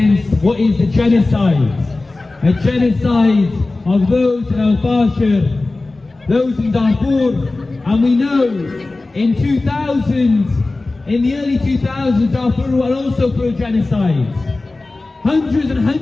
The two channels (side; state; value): right; quieter; 3.2 dB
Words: what is a genocide of those in el-Fasher, those in Darfur. And we know in the early 2000s, Darfur were also through a genocide. Hundreds and